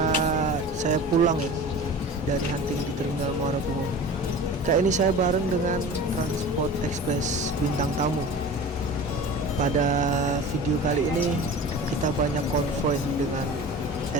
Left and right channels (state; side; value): normal; both; correlation 0.37